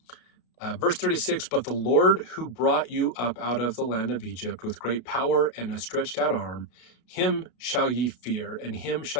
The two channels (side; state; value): right; late; 33 ms